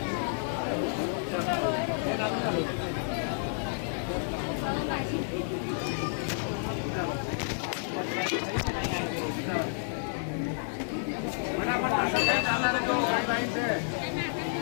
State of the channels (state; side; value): silent; right; 57 dB below the other